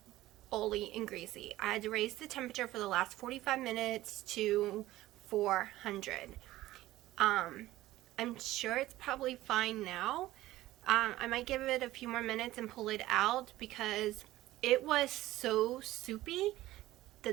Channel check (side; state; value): left; quieter; 16.1 dB